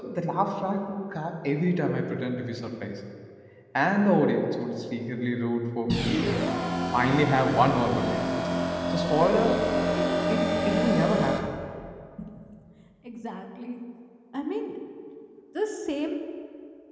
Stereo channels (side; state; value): both; identical; correlation 1.00